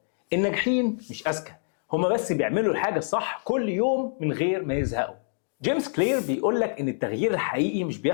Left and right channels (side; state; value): right; silent; digital silence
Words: الناجحين مش أذكى، هما بس بيعملوا الحاجة الصح كل يوم من غير ما يزهقوا. جيمس كلير بيقول لك إن التغيير الحقيقي مش